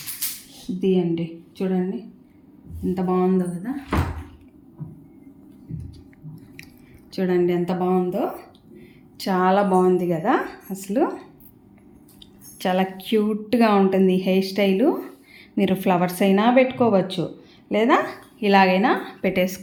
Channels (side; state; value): both; identical; correlation 1.00